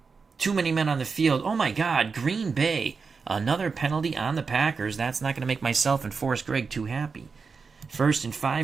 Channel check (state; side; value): quieter; left; 5.0 dB